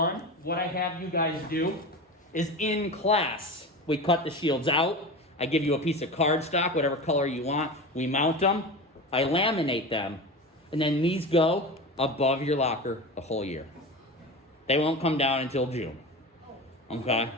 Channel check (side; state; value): both; normal; correlation 0.28